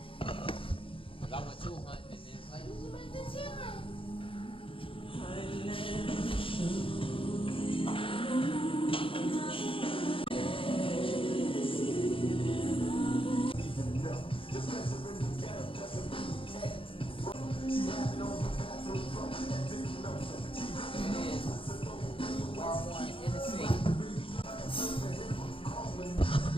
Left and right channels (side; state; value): right; late; 0.26 ms